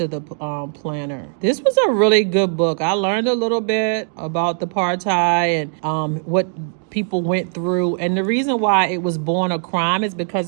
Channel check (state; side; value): silent; left; 56 dB below the other